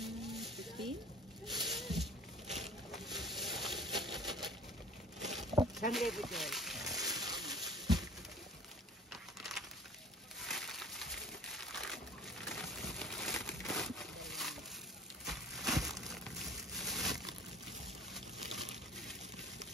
Saan libo, Joy?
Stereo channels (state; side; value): normal; both; correlation 0.46